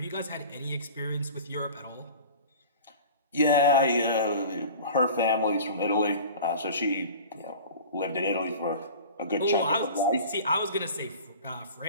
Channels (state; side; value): inverted; both; correlation -0.39